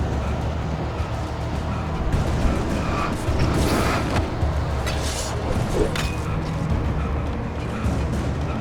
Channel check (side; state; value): both; identical; correlation 1.00